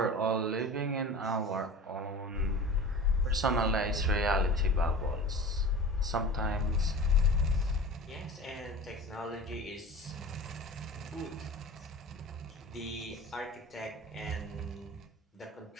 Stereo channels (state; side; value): normal; both; correlation 0.36